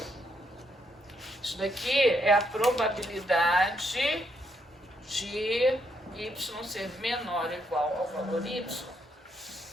Isso daqui é a probabilidade de y ser menor ou igual ao valor y.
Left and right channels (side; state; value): both; normal; correlation 0.76